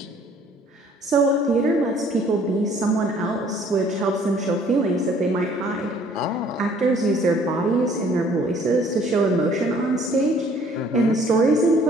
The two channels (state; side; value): normal; both; correlation 0.58